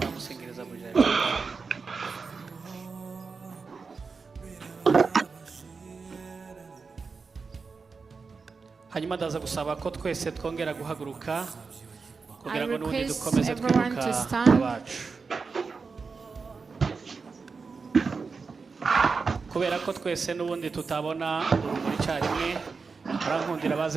mu gihe. Hanyuma ndaza gusaba ko twese twongera guhaguruka kugira ngo n'ubundi dukomeze kwibuka abacu. Kubera ko twese n'ubundi tutabona urumuri icyarimwe, barankundira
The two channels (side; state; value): left; quieter; 4.8 dB